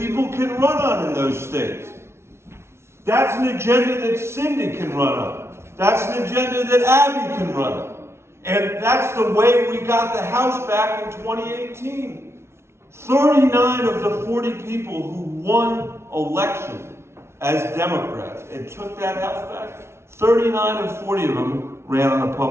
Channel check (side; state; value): left; late; 0.13 ms